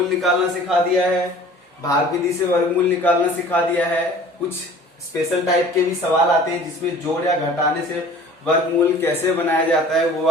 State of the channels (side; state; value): both; normal; correlation 0.46